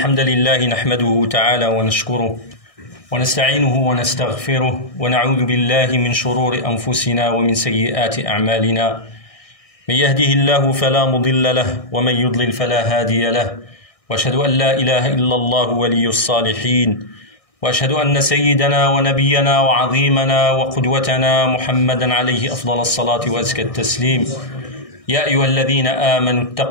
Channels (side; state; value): right; late; 1.6 ms